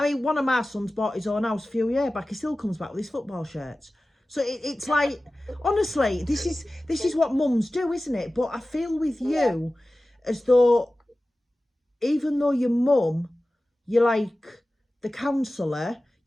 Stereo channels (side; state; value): both; normal; correlation 0.96